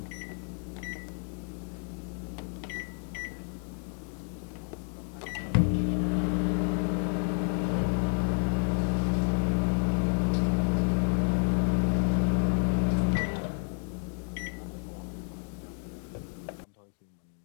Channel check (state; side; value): silent; right; 58 dB below the other